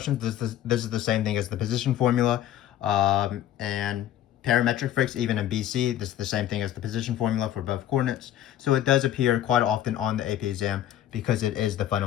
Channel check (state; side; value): quieter; right; 11.9 dB